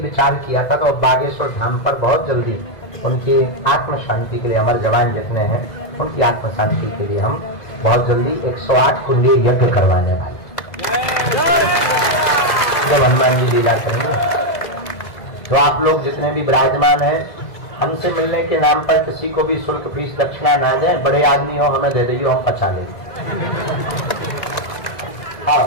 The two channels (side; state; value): right; late; 2.0 ms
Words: विचार किया था, तो बागेश्वर धाम पर बहुत जल्दी उनकी आत्म शांति के लिए, हमारे जवान जितने हैं उनकी आत्म शांति के लिए हम बहुत जल्दी 108 कुंडी यज्ञ करवाने वाले, जब हनुमान जी लीला करेंगे। तो आप लोग जितने भी विराजमान हैं, हमसे मिलने के नाम पर किसी को भी शुल्क फीस दक्षिणा ना दें। बड़े आदमी हो, हमें दे दीजिए, हम पचा लेंगे।